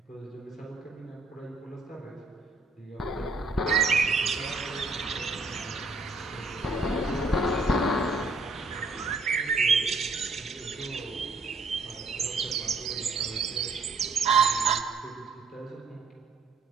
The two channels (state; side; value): quieter; left; 3.5 dB